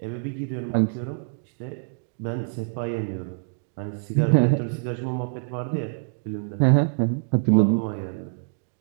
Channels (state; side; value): silent; left; digital silence